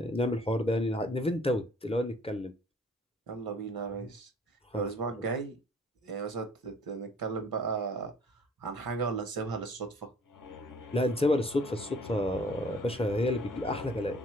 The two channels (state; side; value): normal; both; correlation 0.55